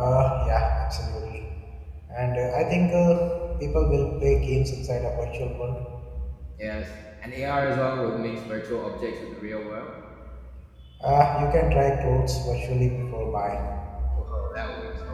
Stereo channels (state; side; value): identical; both; correlation 1.00